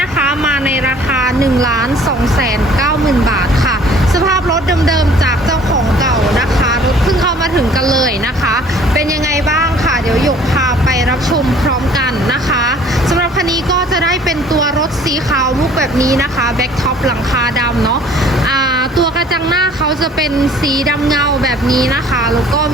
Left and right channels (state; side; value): normal; both; correlation 0.53